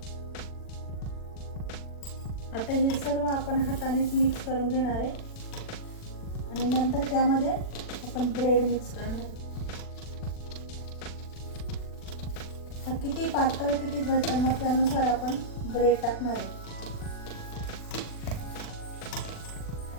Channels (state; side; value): late; right; 40 ms